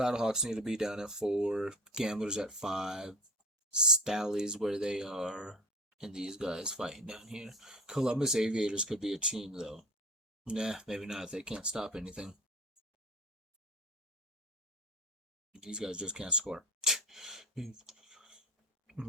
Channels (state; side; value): normal; both; correlation 0.36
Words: need to be down at 4. Gamblers at 5. Stallies where they are, and these guys fighting down here. Columbus Aviators could be a team though. Nah, maybe not. They can't stop anything. These guys just can't score.